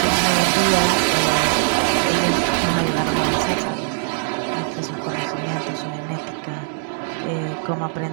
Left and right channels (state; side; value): silent; left; 62 dB below the other